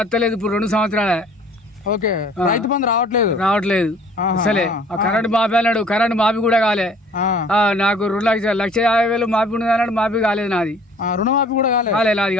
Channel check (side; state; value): both; normal; correlation 0.53